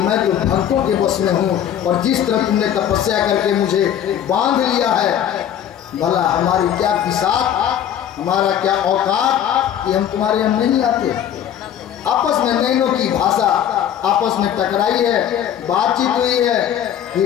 तो भक्तों के बस में हूँ, और जिस तरह तुमने तपस्या करके मुझे बांध लिया है, भला हमारी क्या बिसात, हमारा क्या औकात कि हम तुम्हारे यहाँ नहीं आते। आपस में नैनों की भाषा आपस में टकराई है, बातचीत हुई है,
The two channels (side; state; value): right; quieter; 10.0 dB